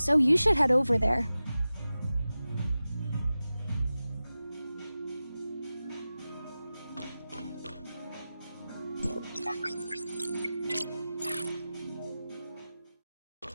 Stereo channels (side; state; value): both; inverted; correlation -0.95